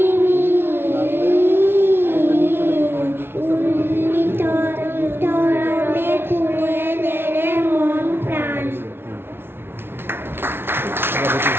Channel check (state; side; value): late; left; 0.11 ms